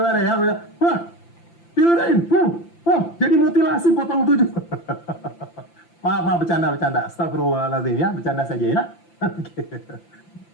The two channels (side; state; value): right; late; 5.9 ms